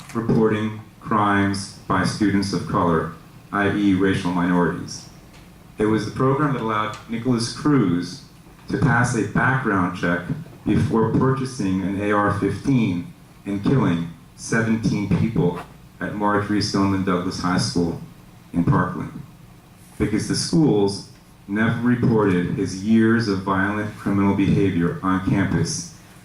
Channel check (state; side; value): identical; both; correlation 1.00